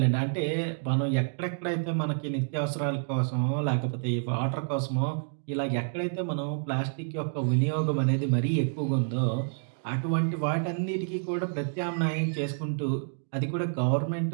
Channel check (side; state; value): left; silent; digital silence